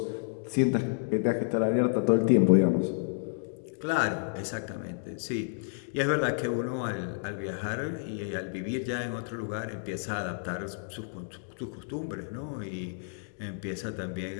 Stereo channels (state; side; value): silent; right; digital silence